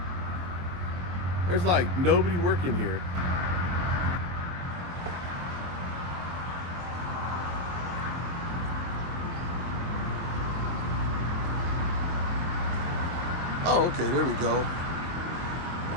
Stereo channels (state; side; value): late; left; 23 ms